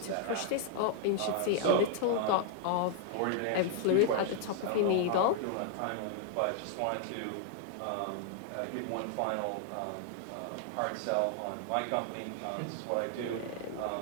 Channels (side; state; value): both; different; correlation -0.01